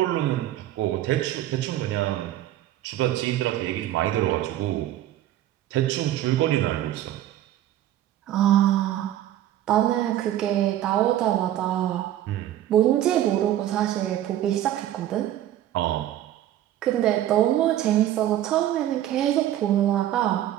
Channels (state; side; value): quieter; left; 12.7 dB